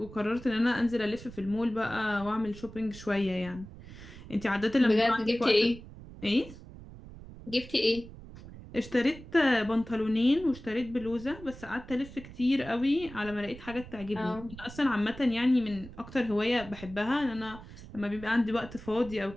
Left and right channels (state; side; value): noise; right; rumble, 16 dB below the sound